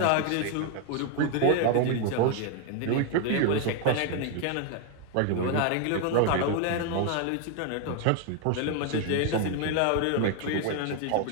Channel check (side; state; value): both; different; correlation 0.01